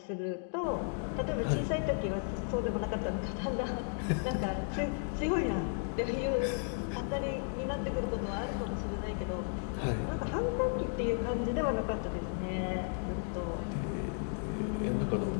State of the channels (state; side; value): silent; right; 55 dB below the other